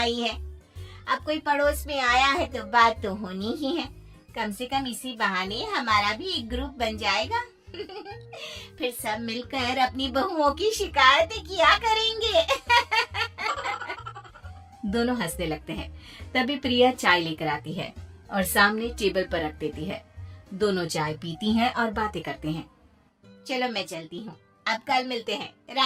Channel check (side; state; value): both; identical; correlation 1.00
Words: है। अब कोई पड़ोस में आया है तो बात तो होनी ही है, कम से कम इसी बहाने हमारा भी एक ग्रुप बन जाएगा। फिर सब मिलकर अपनी बहुओं की शिकायतें किया करेंगे। दोनों हंसने लगते हैं। तभी प्रिया चाय लेकर आती है और सामने टेबल पर रख देती है। दोनों चाय पीती हैं और बातें करते हैं। चलो मैं चलती हूँ, अब कल मिलते हैं।